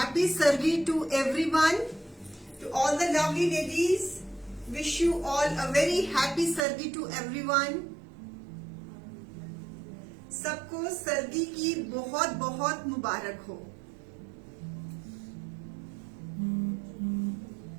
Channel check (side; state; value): left; drops out; at 6.6 s